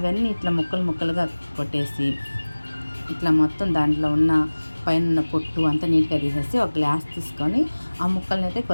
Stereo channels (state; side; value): inverted; both; correlation -1.00